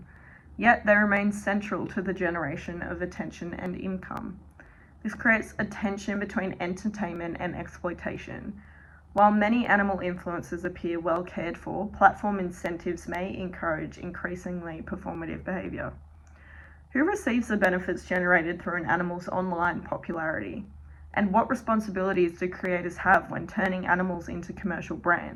Yet they remain central to the generation of attention and income. This creates a tension between entertainment and exploitation. While many animal influencers appear well cared for, platform incentives may encourage increasingly performative behavior. Who receives the benefits generated through an animal's online popularity? And what responsibilities do creators have when turning animals into commercial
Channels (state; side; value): identical; both; correlation 1.00